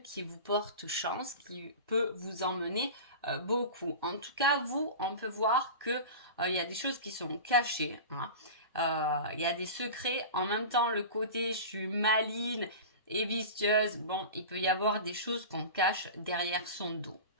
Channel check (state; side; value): inverted; both; correlation -0.31